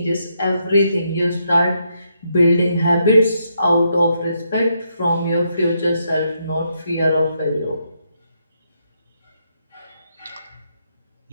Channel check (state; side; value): inverted; both; correlation -0.78